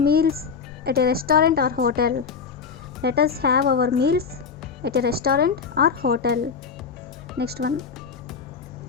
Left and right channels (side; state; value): right; quieter; 5.8 dB